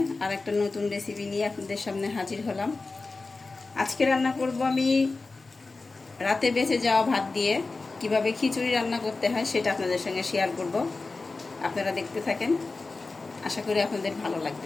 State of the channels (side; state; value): right; quieter; 3.7 dB